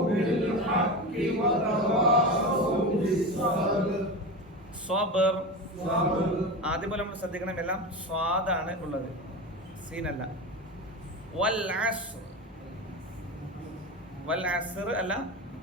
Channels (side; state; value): both; normal; correlation 0.24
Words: ബിൽ ഹഖ് വതവാസൗ ബിസ്സബ്ർ. സബ്ർ. സബ്ർ. ആദ്യം പോലെ നമ്മൾ ശ്രദ്ധിക്കണം, എല്ലാം സ്വാദാണ് ഉള്ളത്, സീനല്ല. വൽ അസ്ർ. വൽ അസ്ർ അല്ല,